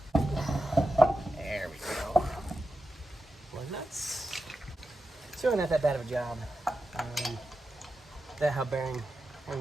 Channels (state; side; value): normal; both; correlation 0.90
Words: There we go. Well, nuts. It's really not that bad of a job. That hub bearing,